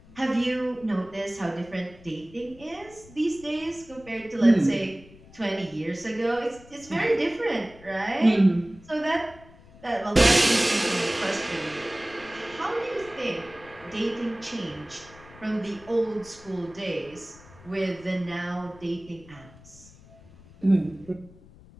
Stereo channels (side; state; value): left; noise; rumble, 22 dB below the sound